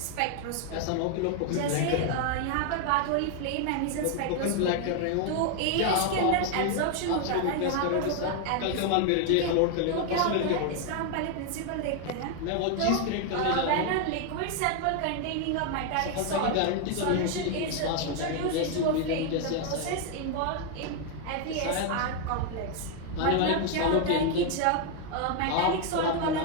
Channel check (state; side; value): different; both; correlation 0.00